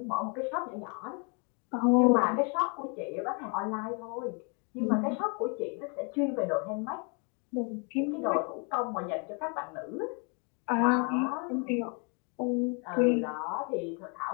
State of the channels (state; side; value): quieter; right; 36.0 dB